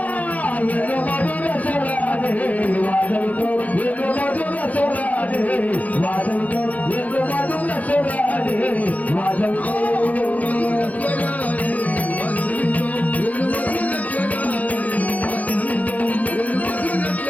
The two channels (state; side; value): late; right; 0.074 ms